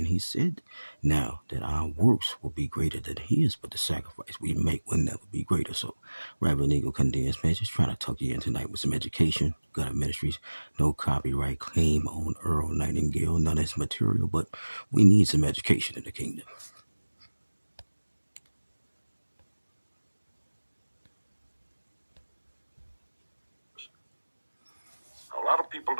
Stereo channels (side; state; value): both; inverted; correlation -1.00